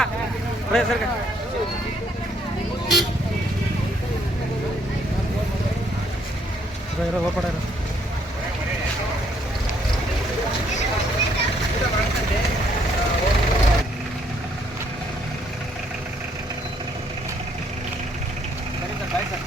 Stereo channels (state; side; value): normal; both; correlation 0.68